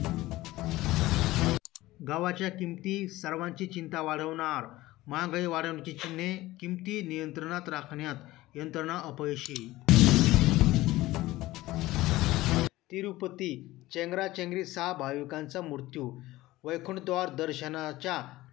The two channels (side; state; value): right; quieter; 17.7 dB